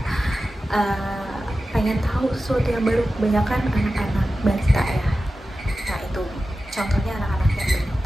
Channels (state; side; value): normal; both; correlation 0.94